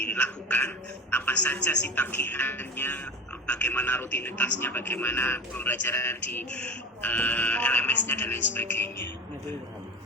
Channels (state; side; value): normal; both; correlation 0.30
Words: apa saja sih tagihannya, bagaimana rutinitasnya, bagaimana pembelajaran di LMS-nya dan lain sebagainya.